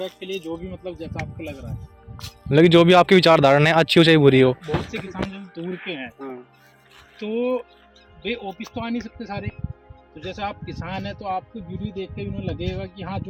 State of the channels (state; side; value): identical; both; correlation 1.00